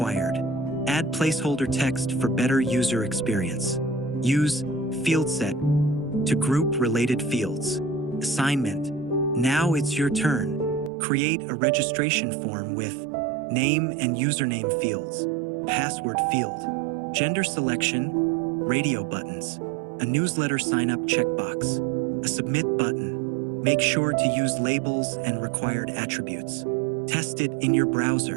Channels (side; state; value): left; drops out; at 10.9 s